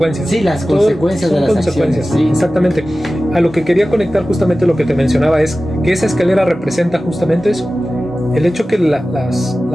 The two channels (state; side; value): normal; both; correlation 0.96